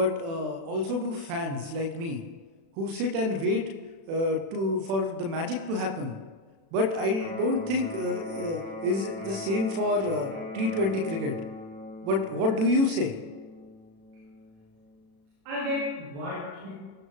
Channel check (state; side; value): late; left; 36 ms